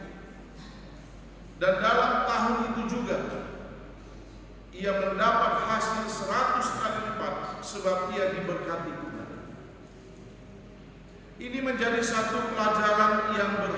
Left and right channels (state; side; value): identical; both; correlation 1.00